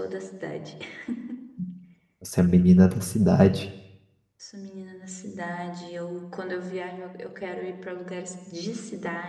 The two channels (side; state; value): both; identical; correlation 1.00